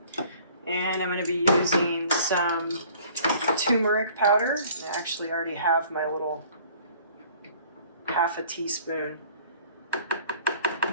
And I'm going to be using some turmeric powder. And I actually already have my little 1/2 teaspoon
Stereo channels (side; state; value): both; inverted; correlation -0.53